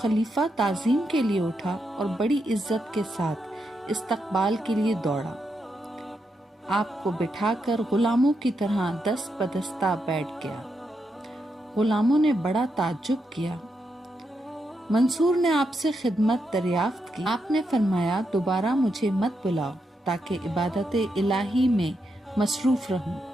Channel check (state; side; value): normal; both; correlation 0.83